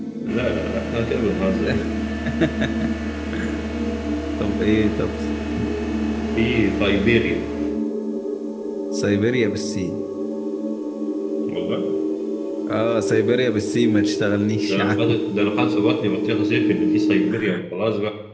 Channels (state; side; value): identical; both; correlation 1.00